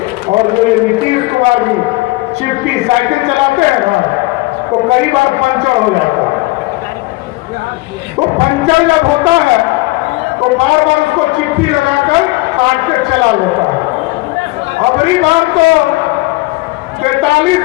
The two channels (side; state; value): right; quieter; 21.8 dB